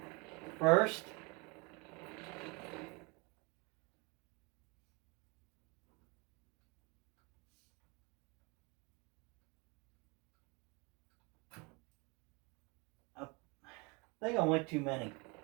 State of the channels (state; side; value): quieter; left; 27.9 dB